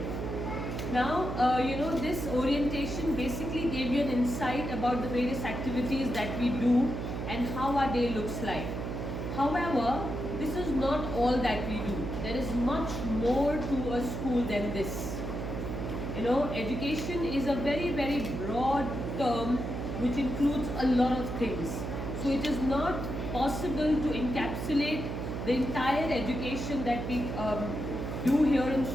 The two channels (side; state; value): right; noise; hum, 4 dB below the sound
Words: Now, this orientation basically gave you an insight about the various activities that we do and how our day looks like. However, this is not all that we do. There is much more to a school than this. Education is a very, very broad term which includes a lot of things. So it is not possible to encapsulate the entire education that we do here in